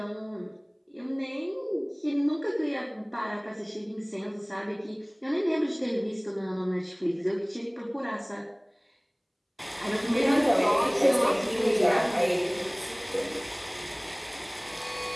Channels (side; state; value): both; identical; correlation 1.00